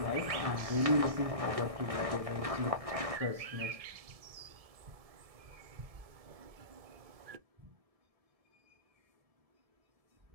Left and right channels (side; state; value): left; late; 1.7 ms